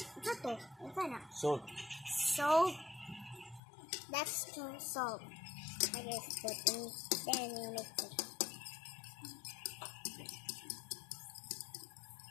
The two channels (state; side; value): drops out; right; at 3.6 s